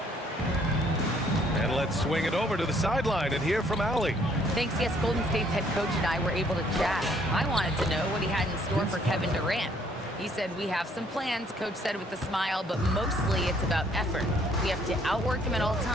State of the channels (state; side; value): normal; both; correlation 0.64